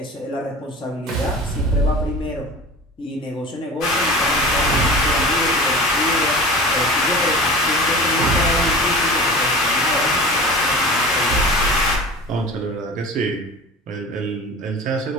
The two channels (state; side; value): normal; both; correlation 0.36